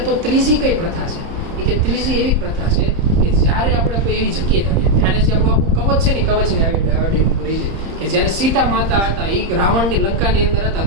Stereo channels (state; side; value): late; left; 30 ms